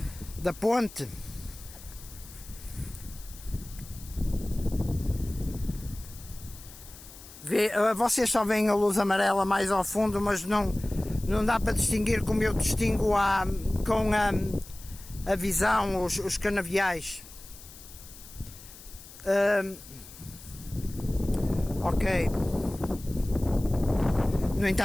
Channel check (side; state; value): left; noise; hiss, 18 dB below the sound